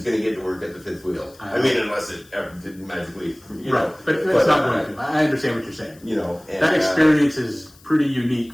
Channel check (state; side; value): noise; left; hiss, 26 dB below the sound